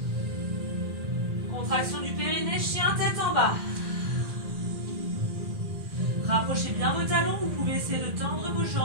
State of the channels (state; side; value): late; left; 1.7 ms